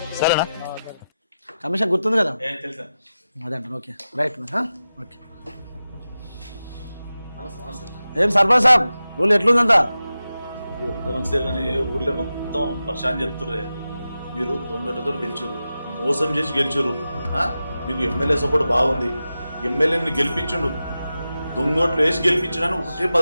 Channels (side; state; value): both; inverted; correlation -0.93